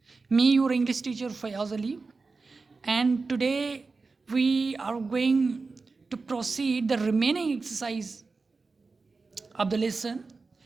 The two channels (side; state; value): left; quieter; 4.1 dB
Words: Me, your English teacher Fayaz Ali, and today we are going to proceed the remaining exercise of the lesson.